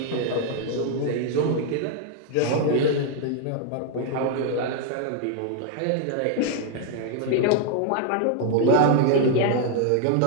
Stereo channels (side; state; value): both; different; correlation 0.01